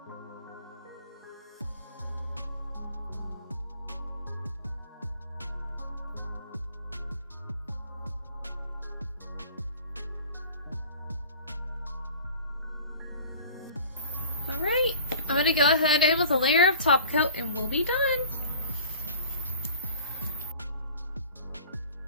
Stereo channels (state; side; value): inverted; both; correlation -0.45